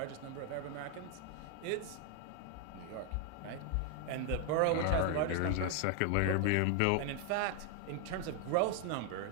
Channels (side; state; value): both; different; correlation 0.00